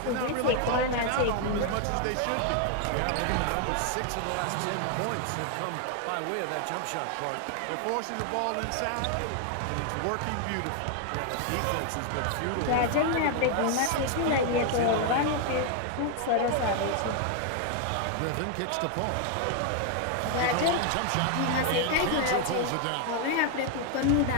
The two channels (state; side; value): different; both; correlation 0.00